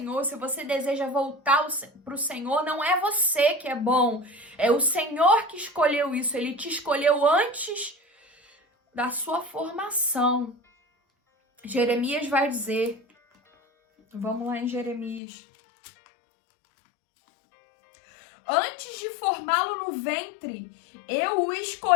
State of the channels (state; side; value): drops out; right; at 15.2 s